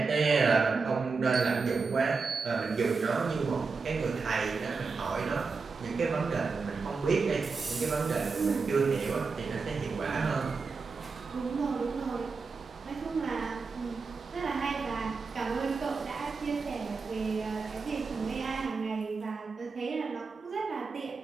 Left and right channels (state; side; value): quieter; left; 4.6 dB